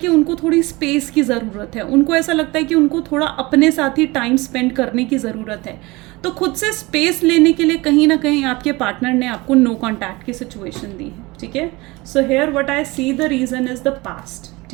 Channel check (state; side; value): quieter; left; 22.7 dB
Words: उनको थोड़ी स्पेस की ज़रूरत है, उनको ऐसा लगता है कि उनको थोड़ा अपने साथ ही टाइम स्पेंड करने की ज़रूरत है। तो खुद से स्पेस लेने के लिए कहीं ना कहीं आपके पार्टनर ने आपको नो कॉन्टैक्ट की सिचुएशन दी है, ठीक है। So here what I see the reason is the past,